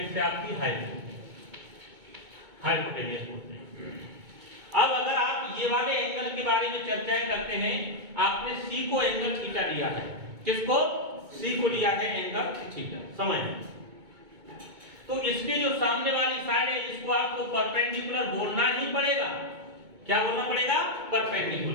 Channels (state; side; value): late; left; 2.2 ms